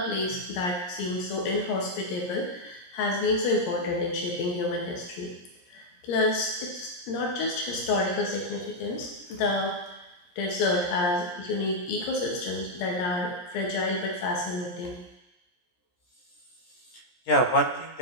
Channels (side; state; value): right; late; 17 ms